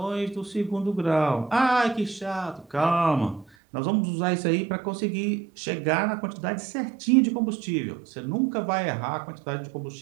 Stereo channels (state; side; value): drops out; left; at 3.5 s